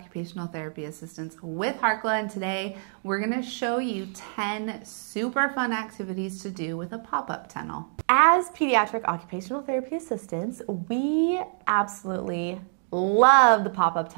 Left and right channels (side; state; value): left; silent; digital silence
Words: Therapy Assistants with Harkla, and today we're going to show you 10 super fun activities to do with a pop-up tunnel. As pediatric occupational therapy assistants, we absolutely love the pop-up